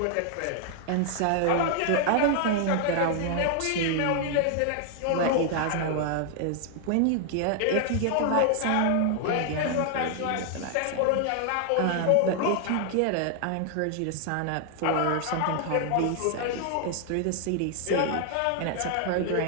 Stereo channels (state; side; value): different; both; correlation 0.00